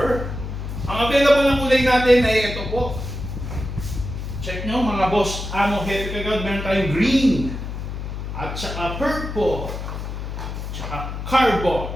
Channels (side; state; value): left; noise; hum, 6 dB below the sound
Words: Ang available ng kulay natin ay ito po. Check nyo mga boss, amo, hepe, kagawad, meron tayong green. At saka purple. Tsaka